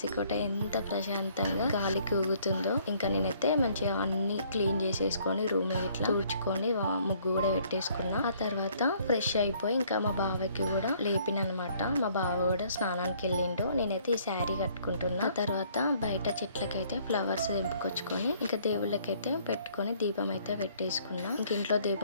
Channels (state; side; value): inverted; both; correlation -0.62